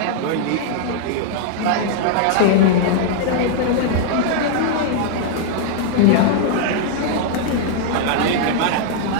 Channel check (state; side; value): different; both; correlation -0.01